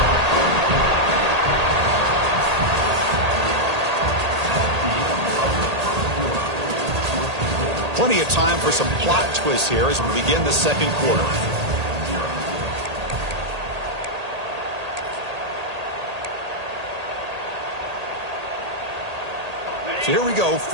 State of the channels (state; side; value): late; left; 1.8 ms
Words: Plenty of time for some plot twists here as we begin the 2nd quarter. So here we go.